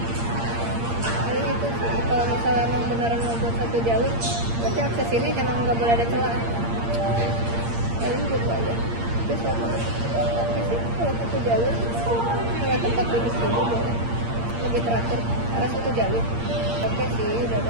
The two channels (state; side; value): late; left; 8.7 ms